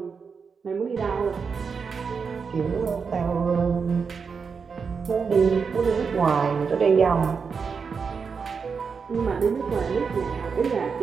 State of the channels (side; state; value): left; quieter; 5.6 dB